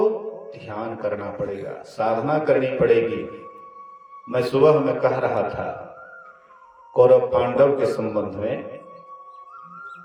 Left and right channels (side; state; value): both; identical; correlation 1.00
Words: ध्यान करना पड़ेगा, साधना करनी पड़ेगी। मैं सुबह में कह रहा था कौरव पांडव के संबंध में,